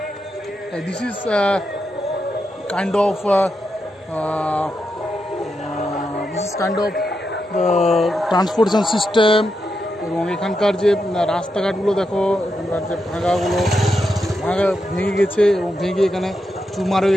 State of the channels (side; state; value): both; normal; correlation 0.85